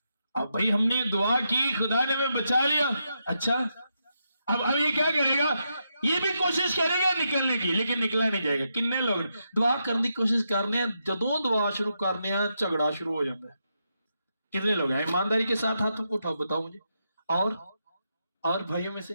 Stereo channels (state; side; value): inverted; both; correlation -0.83